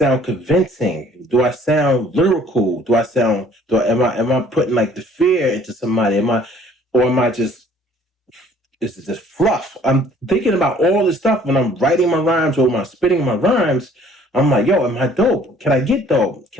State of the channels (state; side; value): normal; both; correlation 0.56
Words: convincing? Do I sound lyrical? Am I putting like the fear into somebody? Am I just this is just fluff? I'm thinking about all this stuff when I'm writing my rhymes or when I'm spitting my rhymes. I'm like, yo, am I dope? Can I get dope?